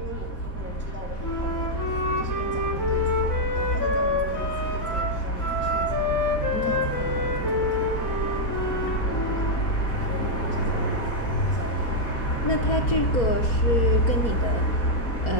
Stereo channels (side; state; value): right; late; 4.1 ms